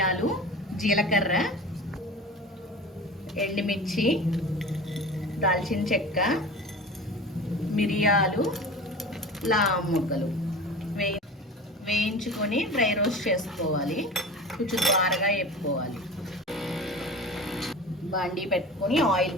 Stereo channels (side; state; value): both; normal; correlation 0.34